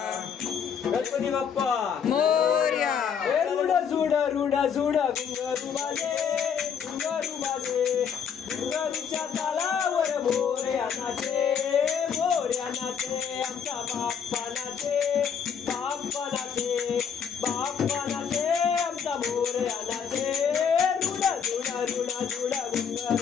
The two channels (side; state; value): right; quieter; 7.3 dB